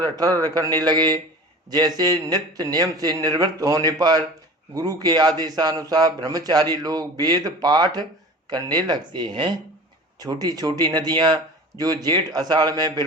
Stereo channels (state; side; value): normal; both; correlation 0.38